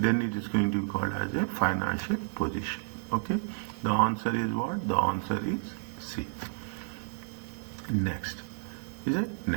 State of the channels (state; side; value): silent; left; digital silence